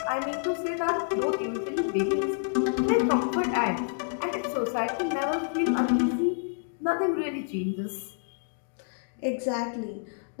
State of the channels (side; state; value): right; silent; digital silence